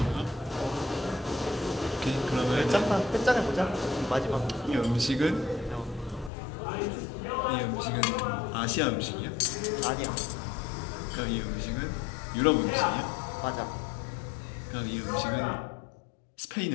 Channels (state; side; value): drops out; right; at 6.3 s